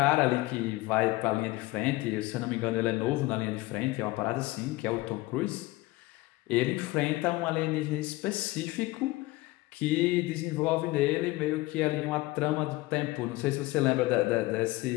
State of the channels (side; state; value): right; quieter; 19.9 dB